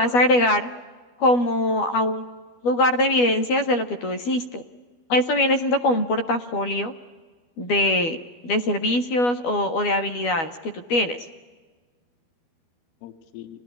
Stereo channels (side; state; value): right; late; 12 ms